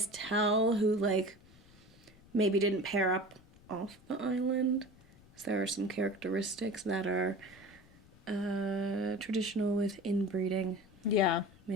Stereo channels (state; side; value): noise; left; rumble, 25 dB below the sound